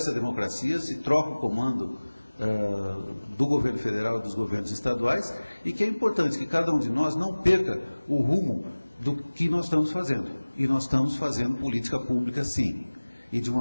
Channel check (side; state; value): both; inverted; correlation -1.00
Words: a democracia, se troca o comando do governo federal e dos governos estaduais, e que é importante que cada um de nós não perca o rumo do que nós estamos fazendo. E nós estamos fazendo política pública, sim, e de